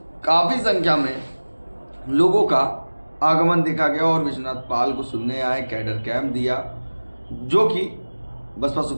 काफी संख्या में लोगों का आगमन देखा गया और विश्वनाथ पाल को सुनने आए। कैडर कैंप दिया, जो कि बसपा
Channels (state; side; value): inverted; both; correlation -1.00